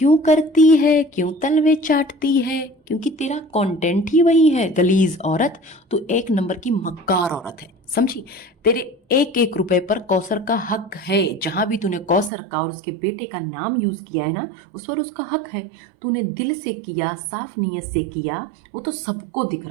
करती है, क्यों तलवे चाटती है? क्योंकि तेरा कंटेंट ही वही है, गलीज औरत। तू 1 नंबर की मक्कार औरत है, समझी? तेरे 1-1 रुपए पर कौसर का हक है। जहां भी तूने कौसर का और उसके बेटे का नाम यूज किया है ना, उस पर उसका हक है। तूने दिल से किया, साफ नीयत से किया, वो तो सबको दिख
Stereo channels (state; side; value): drops out; left; at 12.3 s